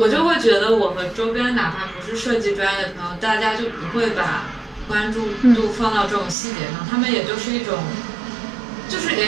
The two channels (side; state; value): left; drops out; at 6.4 s